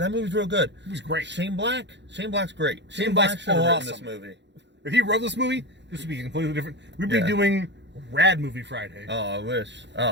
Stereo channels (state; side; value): late; left; 0.52 ms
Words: movie's real good. It was great. Shane Black's great. Shane Black should have written this movie. If he wrote this movie, this would be completely different. We'd be doing Rad Movie Friday. Oh, I wish.